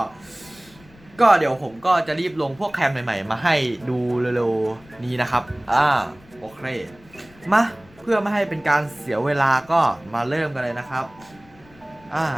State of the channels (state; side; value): noise; left; rumble, 26 dB below the sound